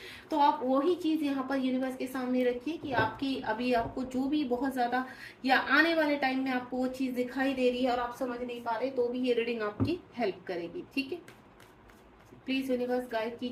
तो आप वही चीज यहाँ पर यूनिवर्स के सामने रखिए कि आपकी अभी आपको जो भी बहुत ज्यादा या आने वाले टाइम में आपको वो चीज दिखाई दे रही है और आप समझ नहीं पा रहे, तो भी ये रीडिंग आपकी हेल्प करेगी, ठीक है। प्लीज यूनिवर्स गाइड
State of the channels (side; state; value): both; identical; correlation 1.00